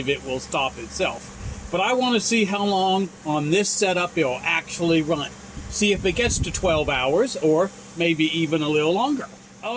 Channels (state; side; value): identical; both; correlation 1.00